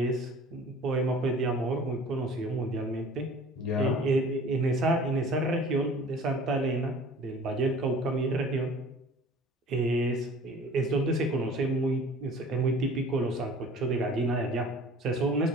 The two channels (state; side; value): normal; both; correlation 0.46